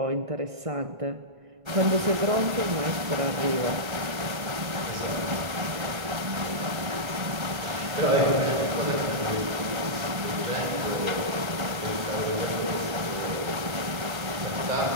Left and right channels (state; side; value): late; left; 1.4 ms